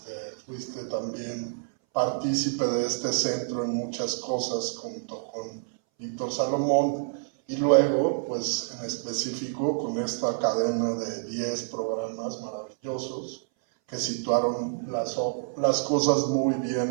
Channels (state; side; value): silent; left; 59 dB below the other